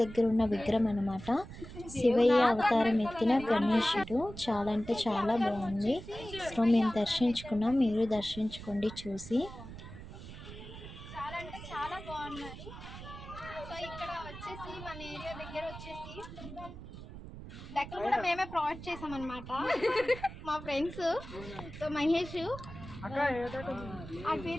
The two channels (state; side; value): noise; right; rumble, 13 dB below the sound